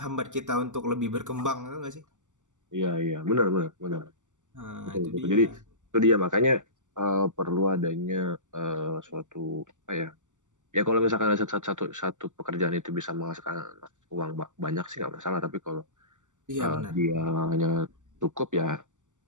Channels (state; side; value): late; left; 0.86 ms